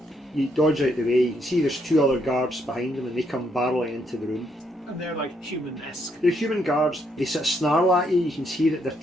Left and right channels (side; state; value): both; normal; correlation 0.74